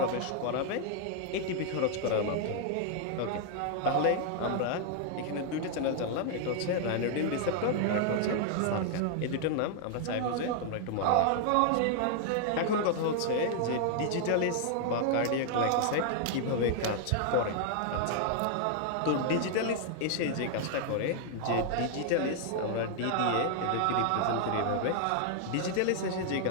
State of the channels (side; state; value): both; different; correlation 0.00